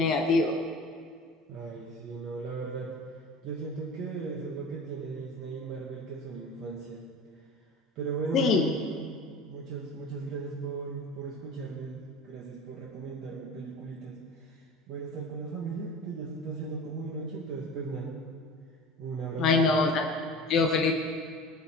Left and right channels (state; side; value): normal; both; correlation 0.36